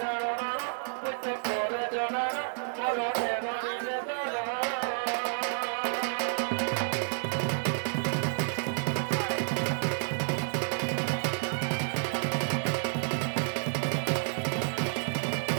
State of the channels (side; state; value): left; silent; digital silence